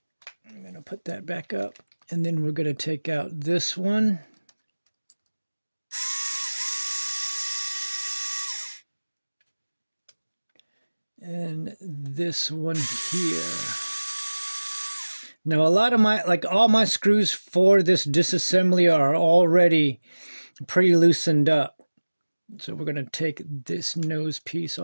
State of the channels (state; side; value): inverted; both; correlation -1.00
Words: I'm going to put that back up. And then we're going to take out this one. And this one here. Now a lot of all my screws for this disassembly are already pretty loosened up. So we're going to take this nose piece